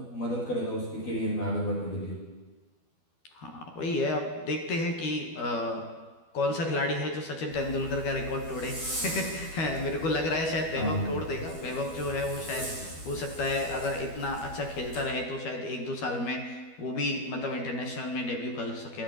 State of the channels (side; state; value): right; late; 12 ms